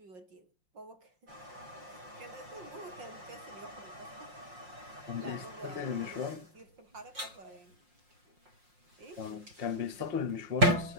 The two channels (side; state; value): left; late; 5.6 ms